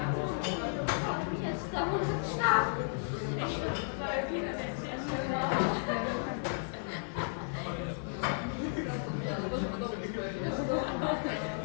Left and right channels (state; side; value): silent; right; 55 dB below the other